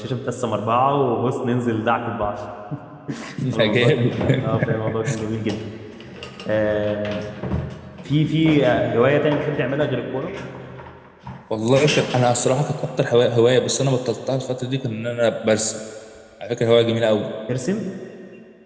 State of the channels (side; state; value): both; identical; correlation 1.00